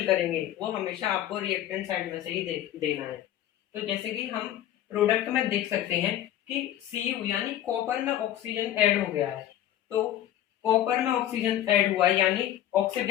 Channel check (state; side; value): quieter; right; 12.1 dB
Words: करेंगे वो हमेशा आपको रिएक्टेंट साइड में से ही देना है। तो जैसे कि हम प्रोडक्ट में देख सकते हैं कि Cu यानी कॉपर में ऑक्सीजन ऐड हो गया है, तो कॉपर में ऑक्सीजन ऐड हुआ है यानी